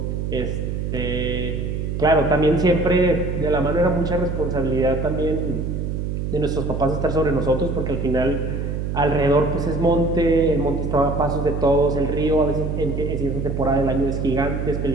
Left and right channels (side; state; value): right; noise; hum, 2 dB below the sound